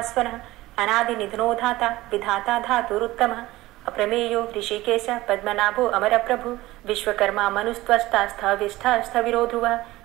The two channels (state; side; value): quieter; left; 18.0 dB